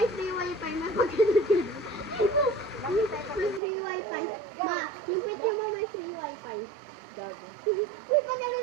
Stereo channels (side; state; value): left; drops out; at 3.6 s